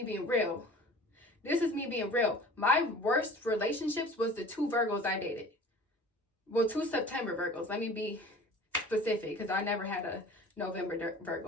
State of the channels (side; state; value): both; normal; correlation 0.44